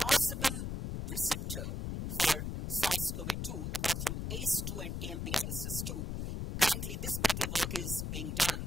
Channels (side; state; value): left; noise; rumble, 3 dB below the sound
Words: receptor for SARS-CoV-2, apart from ACE2 and TMPRSS2. Currently, this particular work is being